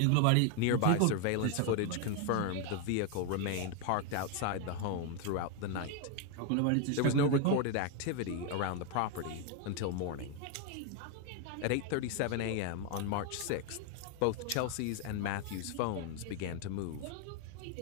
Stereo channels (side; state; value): both; different; correlation 0.01